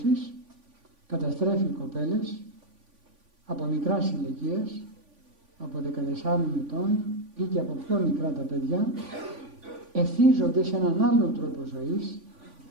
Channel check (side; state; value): left; late; 3.5 ms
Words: καταστρέφει κοπέλες από μικράς ηλικίας, από 14 ετών ή και από πιο μικρά τα παιδιά, εθίζονται σε έναν άλλον τρόπο ζωής,